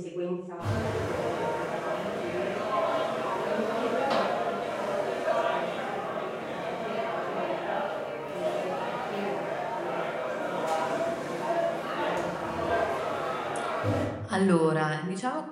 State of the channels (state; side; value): identical; both; correlation 1.00